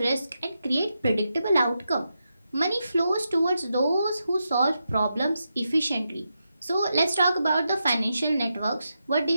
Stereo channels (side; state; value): both; inverted; correlation -0.86